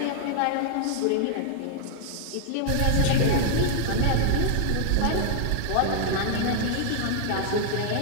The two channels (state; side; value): different; both; correlation 0.00